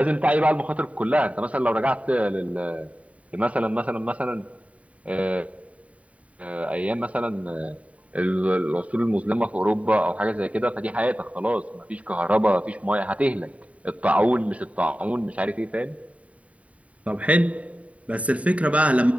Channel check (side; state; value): left; late; 0.067 ms